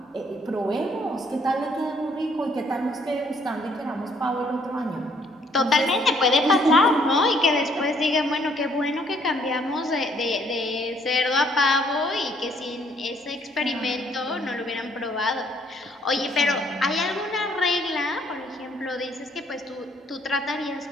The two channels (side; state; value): both; normal; correlation 0.65